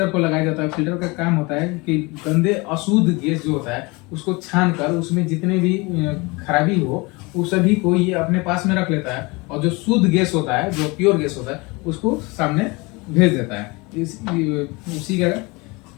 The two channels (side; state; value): right; quieter; 25.8 dB